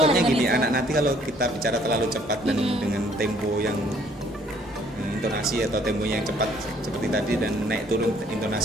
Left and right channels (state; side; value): normal; both; correlation 0.61